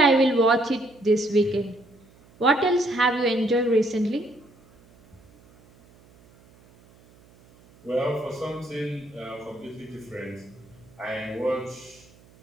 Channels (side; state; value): right; noise; hum, 28 dB below the sound